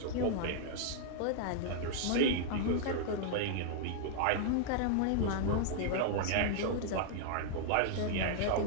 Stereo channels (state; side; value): different; both; correlation -0.01